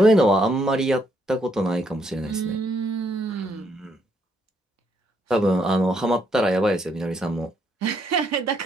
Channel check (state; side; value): normal; both; correlation 0.73